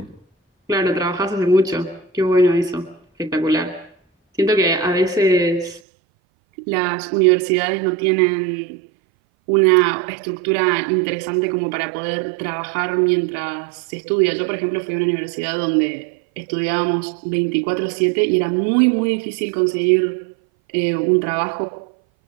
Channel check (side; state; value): left; drops out; at 5.8 s